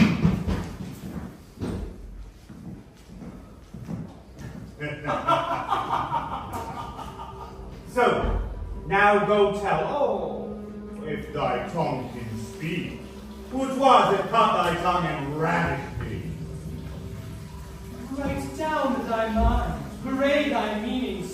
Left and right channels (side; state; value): both; identical; correlation 1.00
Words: So, now go tell all, if thy tongue can speak, who 'twas that cut thy tongue and ravished thee. Write down thy mind, parade thy meaning